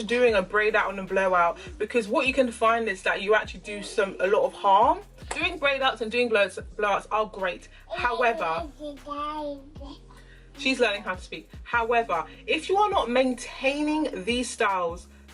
doing a braid out and a blowout, because what you can find is that you actually do a lot of harm. Doing braid outs and doing blowouts are great. However, she's learning how to speak. However, if you are not maintaining these styles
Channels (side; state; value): both; identical; correlation 1.00